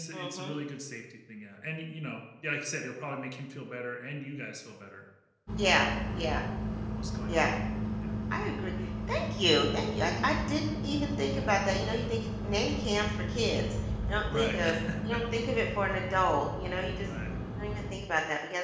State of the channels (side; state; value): both; identical; correlation 1.00